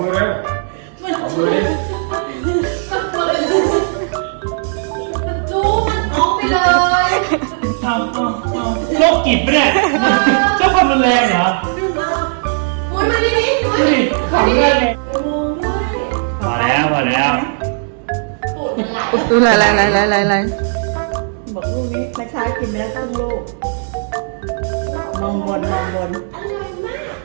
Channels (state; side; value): silent; left; digital silence